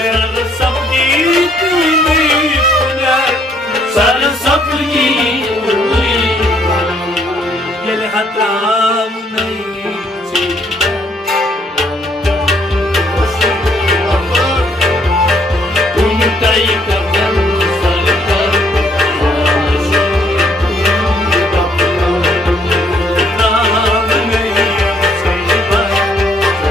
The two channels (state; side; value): normal; both; correlation 0.67